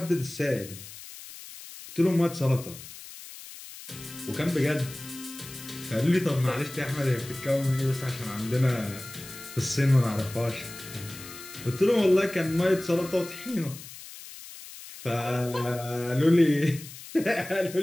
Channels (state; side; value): noise; left; hiss, 15 dB below the sound